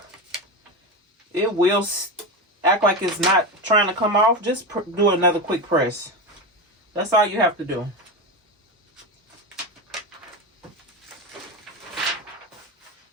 it will act like it's not trying to come off. Just do another quick press. That's all you have to do.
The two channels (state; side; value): normal; both; correlation 0.19